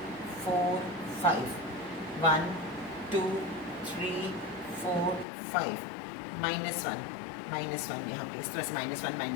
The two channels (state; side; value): drops out; right; at 5.2 s